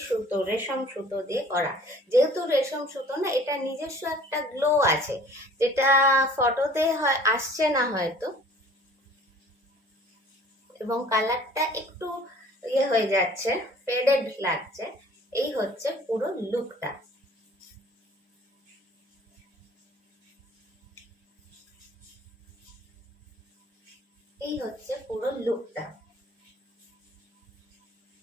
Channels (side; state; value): both; normal; correlation 0.51